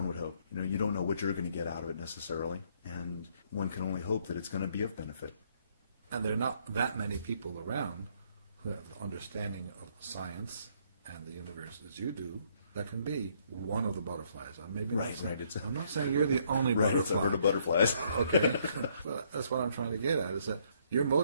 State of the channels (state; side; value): inverted; both; correlation -0.68